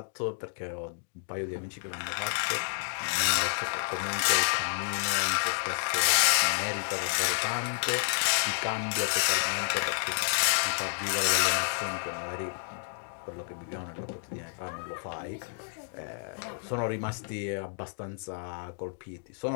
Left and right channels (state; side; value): silent; right; digital silence